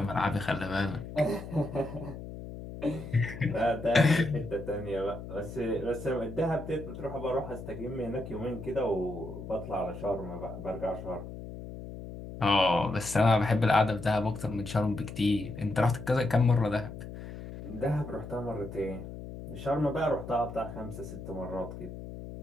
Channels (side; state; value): left; noise; hum, 11 dB below the sound